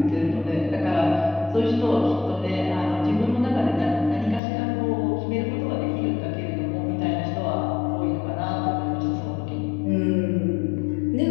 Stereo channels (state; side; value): drops out; right; at 4.4 s